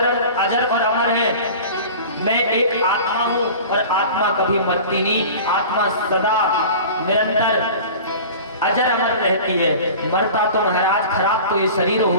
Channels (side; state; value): both; inverted; correlation -0.38